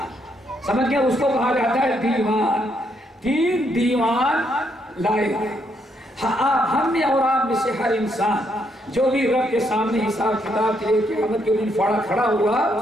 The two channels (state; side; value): normal; both; correlation 0.75